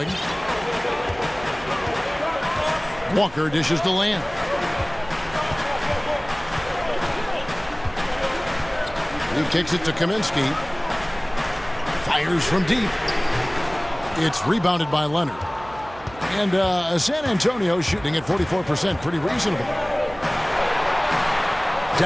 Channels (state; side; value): noise; right; hum, 19 dB below the sound